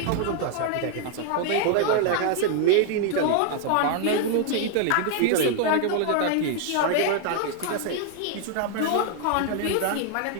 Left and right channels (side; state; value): both; different; correlation 0.00